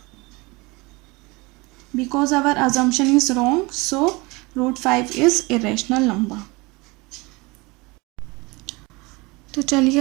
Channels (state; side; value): quieter; left; 24.8 dB